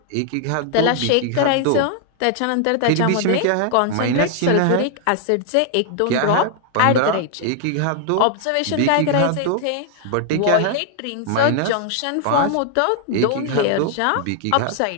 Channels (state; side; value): different; both; correlation 0.00